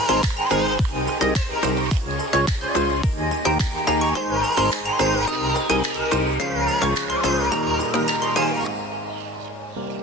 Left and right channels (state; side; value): normal; both; correlation 0.48